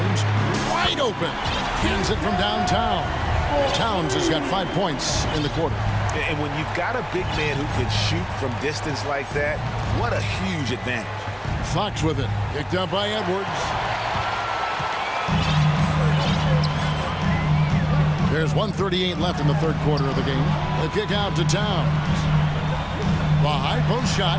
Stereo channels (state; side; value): identical; both; correlation 1.00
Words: wide open. Hands it from downtown. Towns has got 5 points in the quarter. And when you've got a big man who can shoot from distance like that, what a huge advantage. Fox with it. Picked up by Edwards. There's 1:38 left in the 3rd quarter of the game. The kick out to Towns. The high post shot,